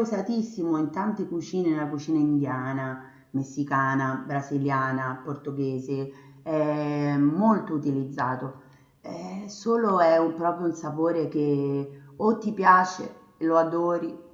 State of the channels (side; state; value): both; identical; correlation 1.00